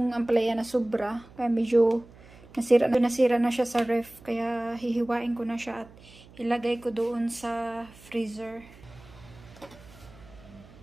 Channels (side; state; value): right; noise; hum, 22 dB below the sound